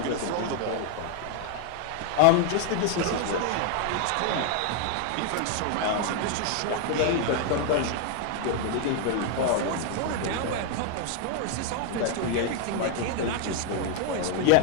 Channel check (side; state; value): both; different; correlation 0.01